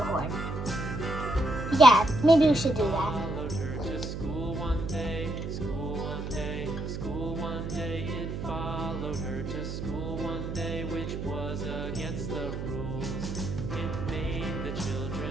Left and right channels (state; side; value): noise; right; hum, 5 dB below the sound